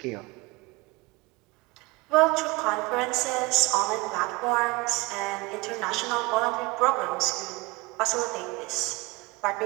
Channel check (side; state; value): left; quieter; 23.4 dB